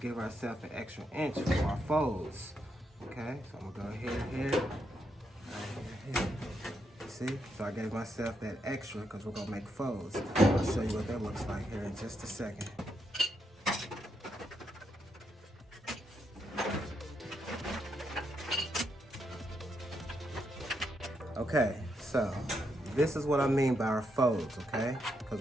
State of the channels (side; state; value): both; normal; correlation 0.80